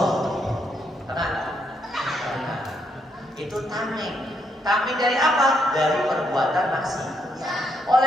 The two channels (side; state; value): both; normal; correlation 0.76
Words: tenang. Itu tameng. Tameng dari apa? Dari perbuatan maksiat.